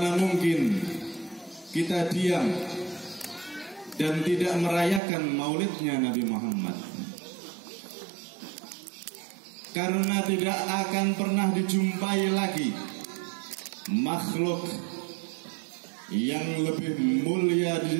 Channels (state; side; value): drops out; left; at 5.0 s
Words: mungkin kita diam dan tidak merayakan maulidnya Nabi Muhammad? Karena tidak akan pernah dijumpai lagi makhluk yang lebih mulia di